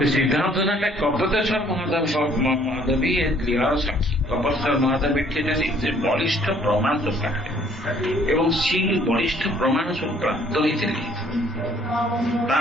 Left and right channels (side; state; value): both; normal; correlation 0.61